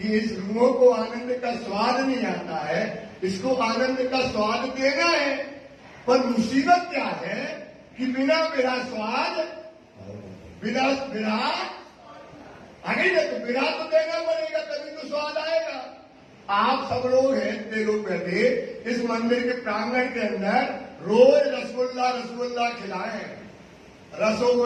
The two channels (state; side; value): identical; both; correlation 1.00